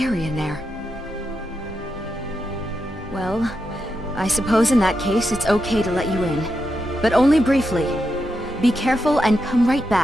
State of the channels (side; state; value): both; normal; correlation 0.86